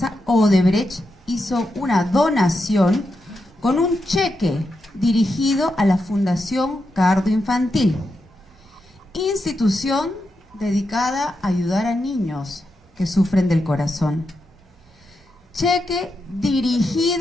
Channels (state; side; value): normal; both; correlation 0.86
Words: Odebrecht hizo una donación con un cheque dirigido a la Fundación Cardo Infantil, institución dedicada a ayudar a niños que sufren del corazón. Cheque